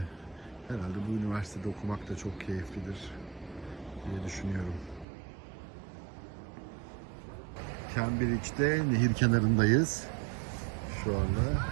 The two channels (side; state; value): left; drops out; at 5.1 s